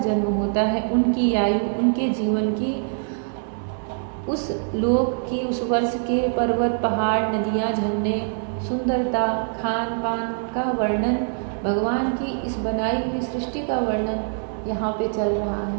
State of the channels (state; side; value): silent; left; digital silence